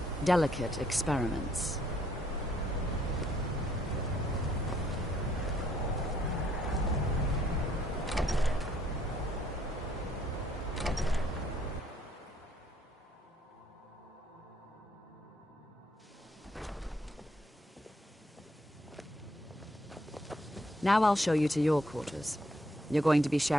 delicate experiments. Now I'll show you to your quarters. You're going to be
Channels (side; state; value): both; normal; correlation 0.68